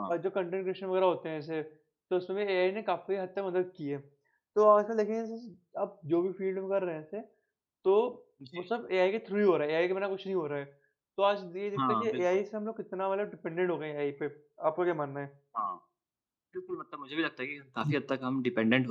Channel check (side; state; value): both; identical; correlation 1.00